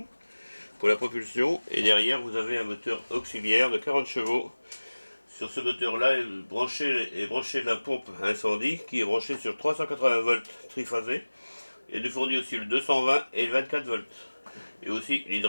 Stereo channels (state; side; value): inverted; both; correlation -1.00